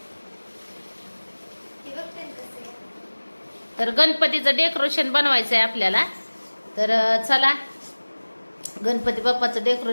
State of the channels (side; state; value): both; inverted; correlation -1.00